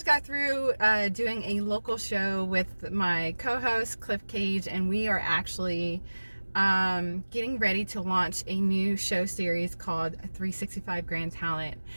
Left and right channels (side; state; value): both; inverted; correlation -1.00